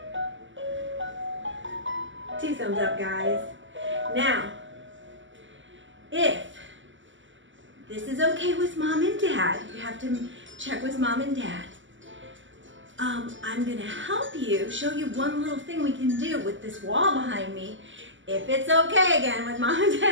2 thumbs up, guys. Now, if this is okay with mom and dad, you have to check with mom and dad. I'm gonna help you, show you one little thing we can do with this wall behind me. If it's okay again with mom and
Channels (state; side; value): late; left; 0.55 ms